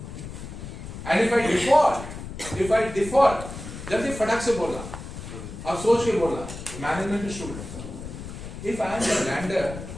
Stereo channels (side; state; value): left; noise; rumble, 10 dB below the sound